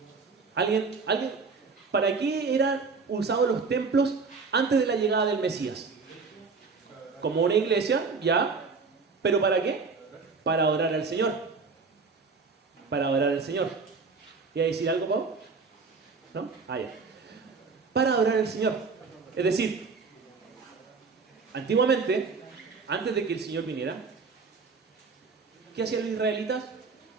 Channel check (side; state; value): left; quieter; 4.7 dB